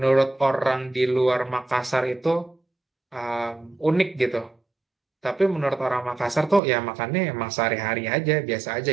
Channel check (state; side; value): drops out; left; at 6.6 s